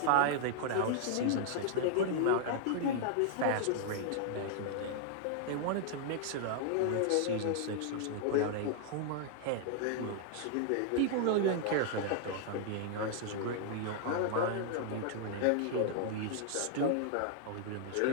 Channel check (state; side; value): different; both; correlation -0.01